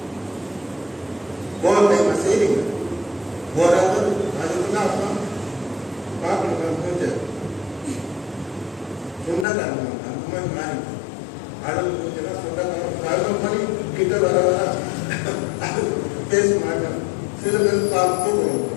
ஓவர் டைம் செய்றீங்க. ஓராவது அதுக்குதான் அப்புறம் பார்க்கணும். மூஞ்ச சொந்தக்காரங்க அந்த மாதிரி மாறி அழகு மூஞ்செல்லாம் சொந்தக்காரங்க 11 மணி கிட்ட வர அது பேச மாட்டேன். சில பேர்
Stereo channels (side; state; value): right; drops out; at 9.5 s